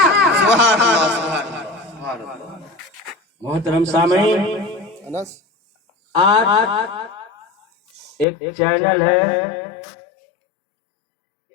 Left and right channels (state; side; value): drops out; right; at 8.2 s